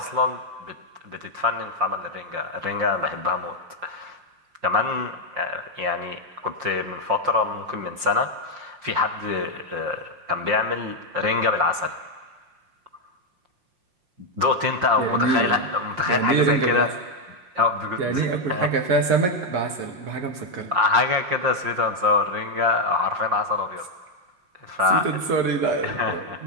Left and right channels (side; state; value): left; late; 5.6 ms